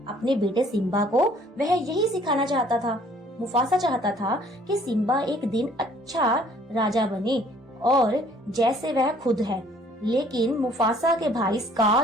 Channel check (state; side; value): normal; both; correlation 0.58